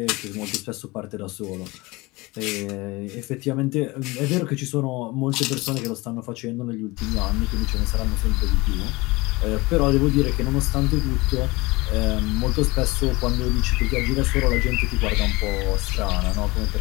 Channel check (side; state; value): right; quieter; 22.9 dB